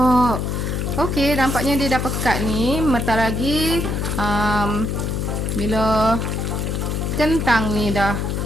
Okey, nampaknya dia dah pekat ni. Bentar lagi bila kentang ni dah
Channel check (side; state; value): left; noise; hum, 1 dB below the sound